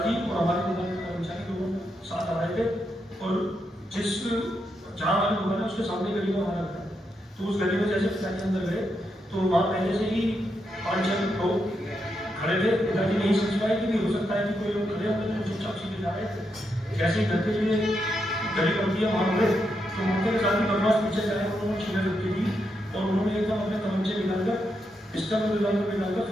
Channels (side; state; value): both; normal; correlation 0.82